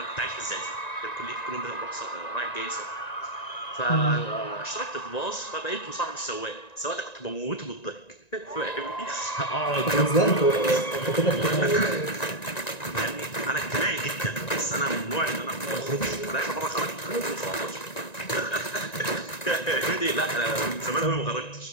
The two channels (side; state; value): right; late; 1.9 ms